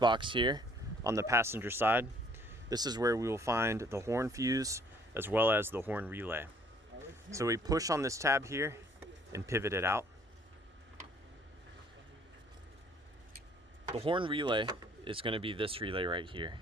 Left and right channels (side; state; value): both; normal; correlation 0.59